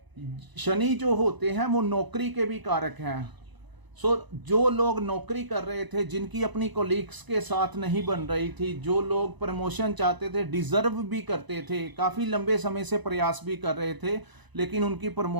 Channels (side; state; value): left; late; 1.0 ms